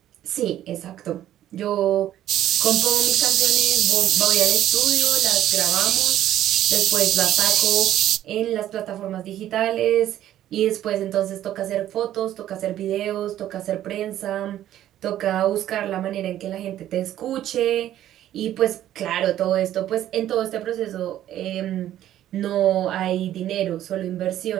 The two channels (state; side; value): quieter; left; 12.3 dB